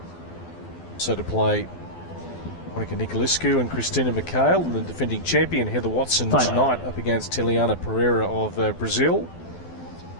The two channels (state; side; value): late; right; 12 ms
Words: So to play Monica Nicolescu and Christina Mikhail, and the defending champion Heather Watson tonight up against Teliana Pereira of Brazil.